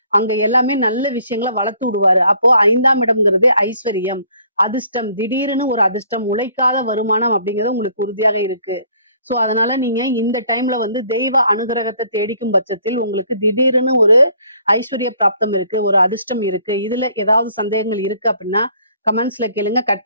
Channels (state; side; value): inverted; both; correlation -0.61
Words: அங்க எல்லாமே நல்ல விஷயங்களை வளர்த்து விடுவாரு. அப்போ 5ஆம் இடம்ங்கிறது ஐஸ்வர்யம், அதிர்ஷ்டம், திடீர்னு ஒரு அதிர்ஷ்டம், உழைக்காத வருமானம் அப்படிங்கிறது உங்களுக்கு உறுதியாக இருக்கு. சோ அதனால நீங்க இந்த டைம்ல வந்து தெய்வ அனுகிரகத்தை தேடிக்கும் பட்சத்தில் உங்களுக்கு திடீர்னு ஒரு ஐஸ்வர்ய பிராப்தம் இருக்கு, ஒரு அதிர்ஷ்டம் இருக்கு. இதுல ஏதாவது சந்தேகங்கள் இருக்கு அப்படின்னா கமெண்ட்ஸ்ல கேளுங்க,